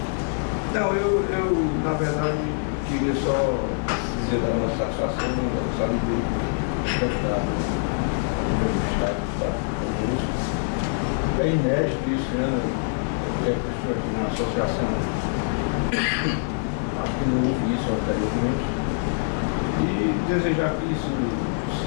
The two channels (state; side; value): silent; right; digital silence